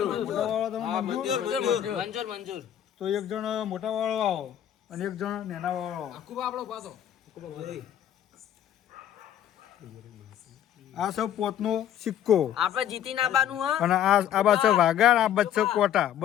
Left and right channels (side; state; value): right; quieter; 10.6 dB